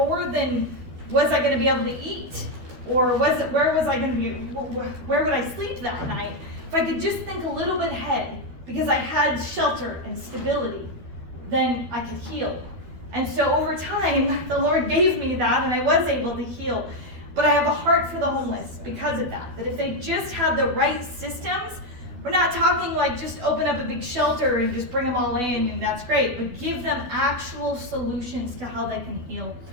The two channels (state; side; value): late; left; 12 ms